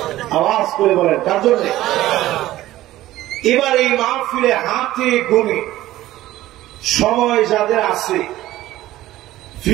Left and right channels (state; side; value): quieter; left; 15.4 dB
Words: আওয়াজ করে বলেন, কার জন্য? এবার এই মাহফিলে হাতে গুনে সময় যাদের আছে,